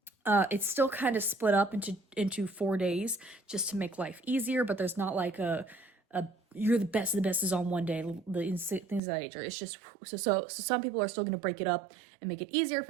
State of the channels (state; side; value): drops out; left; at 9.0 s